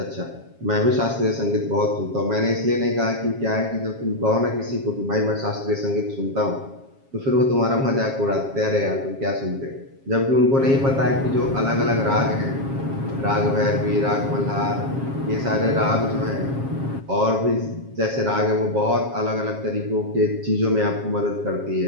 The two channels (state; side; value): late; left; 7.4 ms